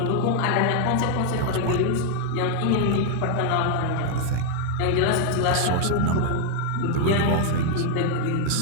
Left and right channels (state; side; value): different; both; correlation 0.00